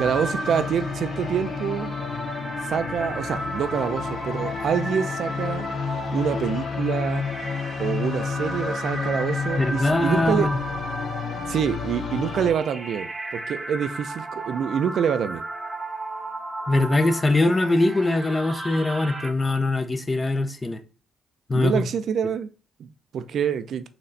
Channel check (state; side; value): normal; both; correlation 0.79